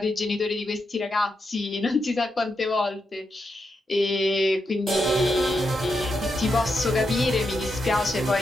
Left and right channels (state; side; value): normal; both; correlation 0.85